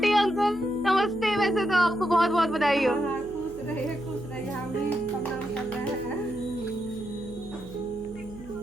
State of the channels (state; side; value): noise; right; hum, 18 dB below the sound